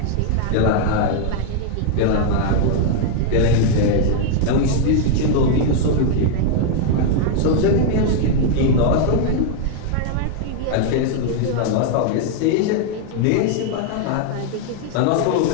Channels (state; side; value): different; both; correlation 0.00